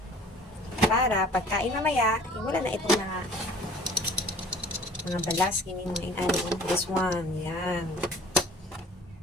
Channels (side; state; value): both; normal; correlation 0.49